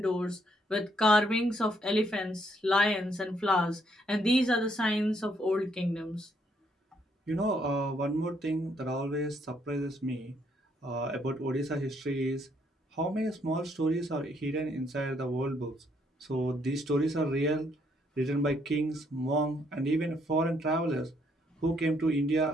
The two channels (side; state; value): both; normal; correlation 0.71